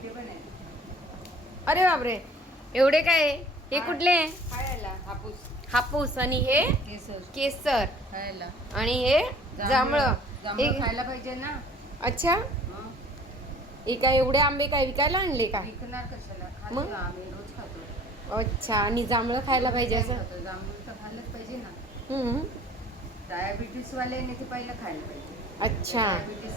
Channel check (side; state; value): both; normal; correlation 0.51